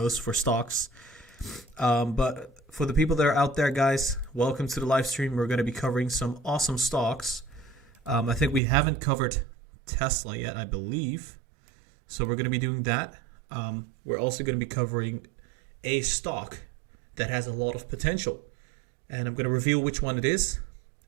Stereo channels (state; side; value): drops out; left; at 8.6 s